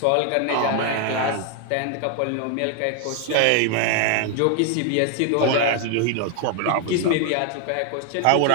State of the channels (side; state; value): both; different; correlation 0.01